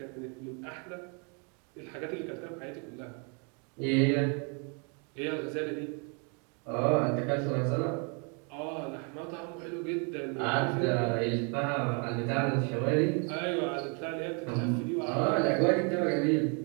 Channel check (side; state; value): left; quieter; 36.3 dB